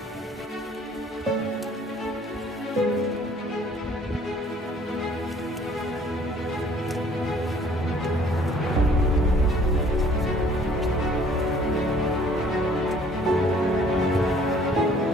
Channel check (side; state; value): both; normal; correlation 0.57